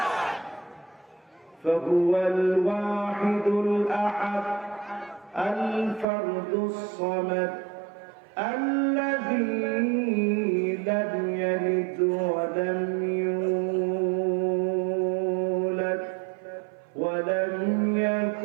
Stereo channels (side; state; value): left; drops out; at 6.1 s